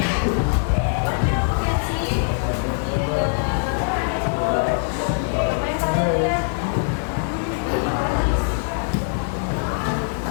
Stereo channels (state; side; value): silent; right; 64 dB below the other